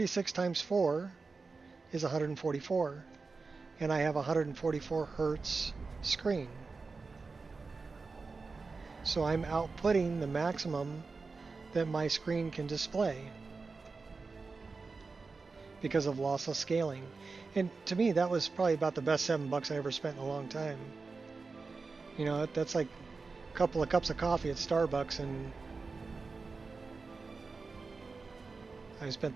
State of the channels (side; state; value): left; quieter; 4.2 dB